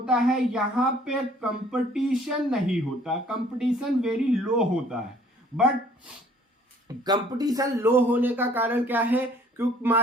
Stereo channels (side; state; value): both; normal; correlation 0.57